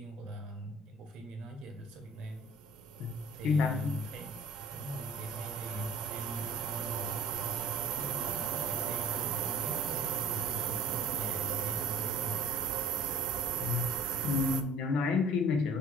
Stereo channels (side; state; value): both; normal; correlation 0.48